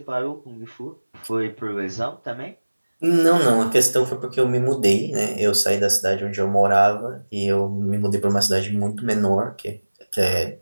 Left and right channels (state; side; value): inverted; both; correlation -1.00